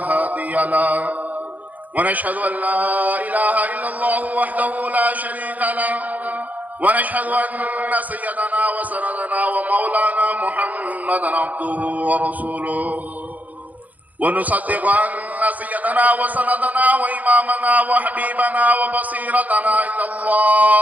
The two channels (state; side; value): late; left; 0.078 ms